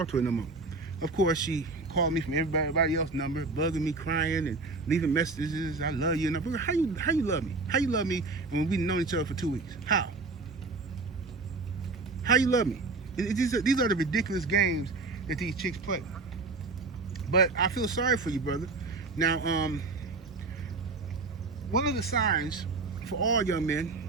to her no more. Of course, she called me from everybody else's number, bugging me, crying, and leaving messages. I love you. And I'm like, how you love me? How you love me when we've known each other for 2 weeks? How you love me? These are the ridiculous games that these chicks play. But I feel sorry for you, brother. Now, one of the signs for all young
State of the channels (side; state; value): left; quieter; 3.6 dB